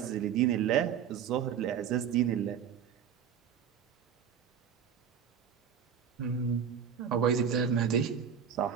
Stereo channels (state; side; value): quieter; left; 8.0 dB